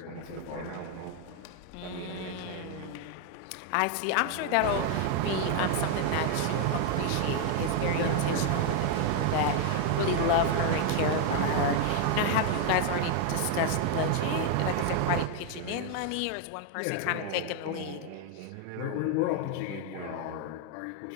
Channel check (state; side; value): different; both; correlation 0.01